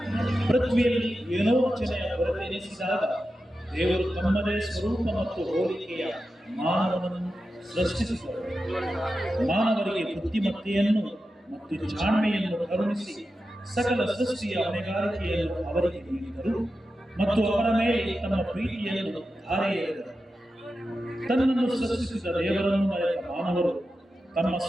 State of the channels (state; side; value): normal; both; correlation 0.91